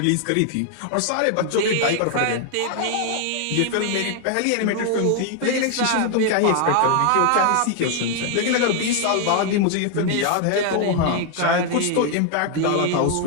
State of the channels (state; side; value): different; both; correlation 0.00